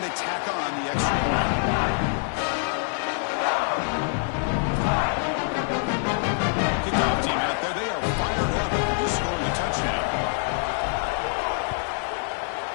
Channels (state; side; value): silent; right; 56 dB below the other